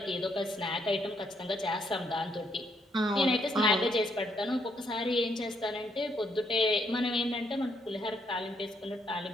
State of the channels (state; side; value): normal; both; correlation 0.74